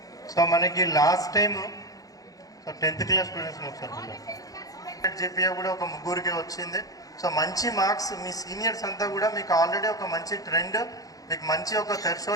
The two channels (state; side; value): late; right; 0.17 ms